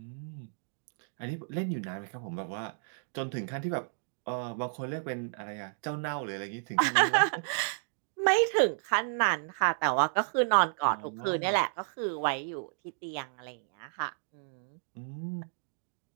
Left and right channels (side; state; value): left; silent; digital silence